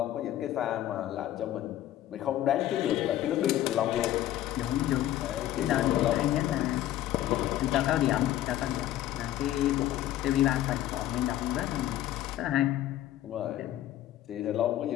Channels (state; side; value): quieter; right; 13.2 dB